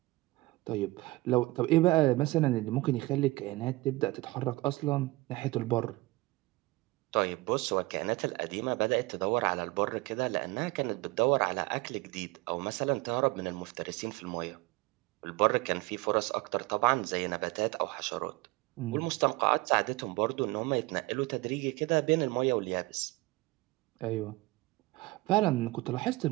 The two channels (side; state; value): left; quieter; 21.2 dB